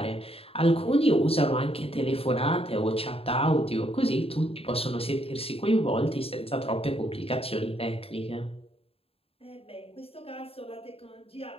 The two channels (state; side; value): late; right; 0.28 ms